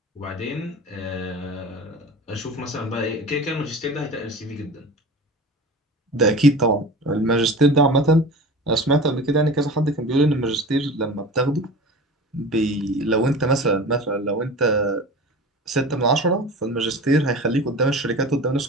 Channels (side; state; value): both; normal; correlation 0.35